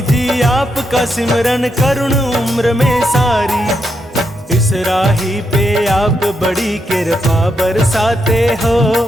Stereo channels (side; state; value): both; normal; correlation 0.81